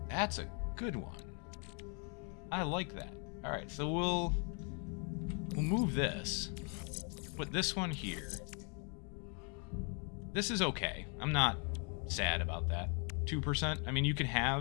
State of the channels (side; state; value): right; quieter; 38.3 dB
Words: That's a good one. I like that. All right, so we'll move this. Put this one here. This is okay. I'm not sad about that. 2%. I mean, you can